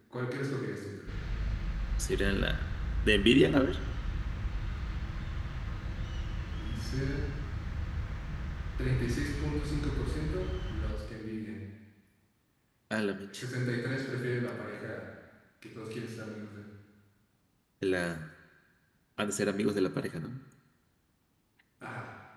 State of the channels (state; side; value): identical; both; correlation 1.00